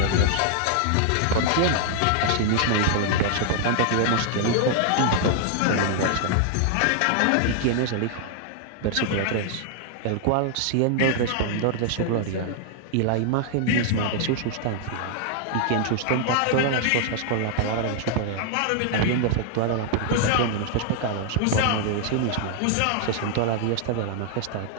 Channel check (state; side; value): different; both; correlation 0.00